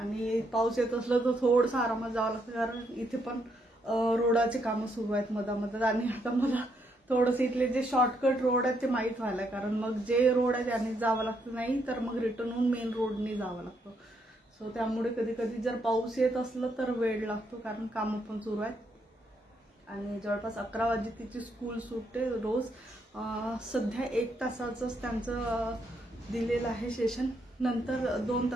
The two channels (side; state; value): both; normal; correlation 0.76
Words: पाऊस येत असलं तर थोडंसं आरामात जावं लागतं कारण इथे पण रोडाचे कामं सुरू आहेत मधामधात. आणि आता मला थोडंसं इथले जे शॉर्टकट रोड आहेत ते माहीत व्हायला, कारण मग जे रोड आहे त्याने जावं लागतं, नाही तर मग रिटर्न होऊन मेन रोडने जावं लागतं. सो त्यामुळे कधी कधी जर पाऊस येत असलं तर वेळ लागतो कारण कामं पण सुरू आहेत. आणि जवळपास 11 वाजे तिची स्कूल सुटते रोज. सध्या 1 तासाचंच त्यांचं दिलेलं आहे सेशन, नंतर 2